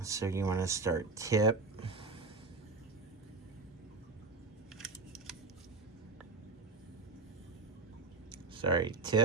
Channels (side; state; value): left; quieter; 3.7 dB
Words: So you want to start tip.